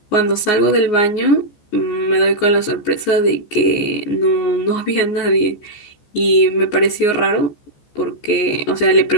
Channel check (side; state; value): right; late; 14 ms